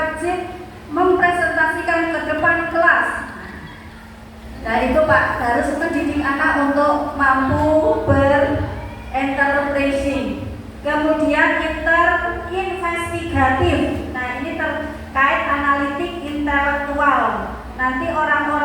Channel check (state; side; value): identical; both; correlation 1.00